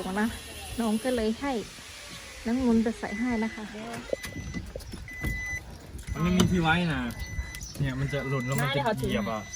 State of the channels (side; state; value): both; identical; correlation 1.00